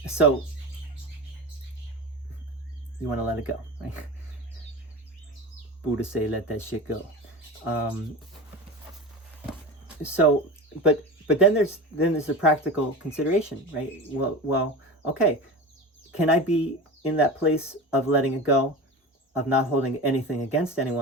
So, you want to let it go, right? Buddha say, let that shit go. But then there's a practical consideration, right? Well, okay, can I be in that place of letting it go, of not holding anything against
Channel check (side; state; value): both; normal; correlation 0.29